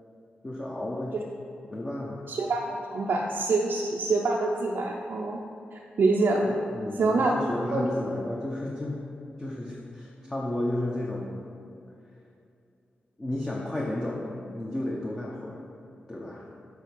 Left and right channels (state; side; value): normal; both; correlation 0.83